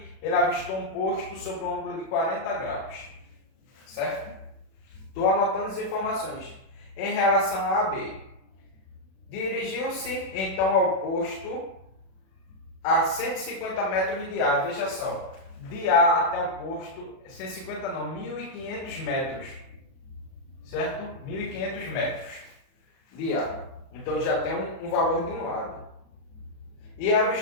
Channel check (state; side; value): late; right; 37 ms